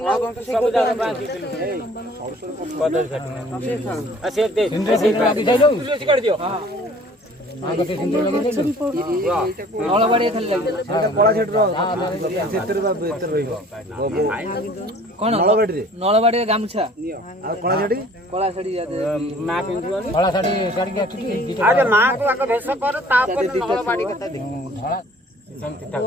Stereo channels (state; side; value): normal; both; correlation 0.52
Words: ନା ସବୁ ଜାଗା ବାନ୍ଧିଥିଲୁ କଦଳୀ ଛାଟୁ ଆଉ ସେ ଦେ କାଢି ଦିଅ ନଳବାଡ଼ି ଖାଲି ଲାଗିବ କଳା ଛାଟୁର ସେଥିରେ ବା ଭିତରେ ରହିବ କଣ ନଳବାଡ଼ିରେ ଗାମୁଛା ଆଉ କଳା ଶାଢ଼ୀ ମା ପିନ୍ଧିବନି କଳା ଶାଢ଼ୀ ଶାଢ଼ୀ ଆରେ ମାକୁ ଆଗ ଭେଷ କର ତାପରେ ନଳବାଡ଼ି କଥା ଦେଖ